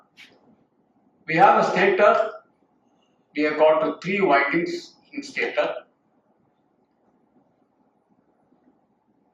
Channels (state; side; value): identical; both; correlation 1.00